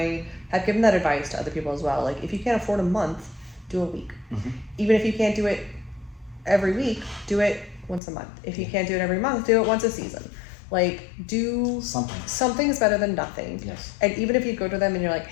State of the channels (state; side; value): drops out; right; at 8.0 s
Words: have given that advice to other people as well. Like, if you can't afford a month, do a week. Mm-hmm. Even if you can't do it every week, do it once a month. If you can't do it every month, do it once a season. Like, do something. Something is better than nothing. Yes. And even if you go to them and you're like,